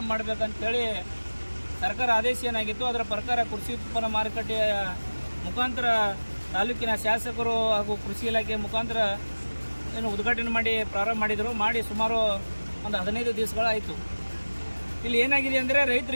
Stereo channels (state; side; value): inverted; both; correlation -1.00